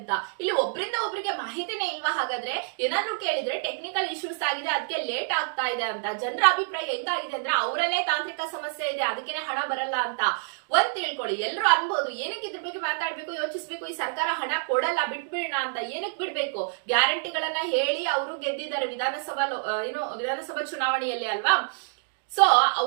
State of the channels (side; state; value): left; silent; digital silence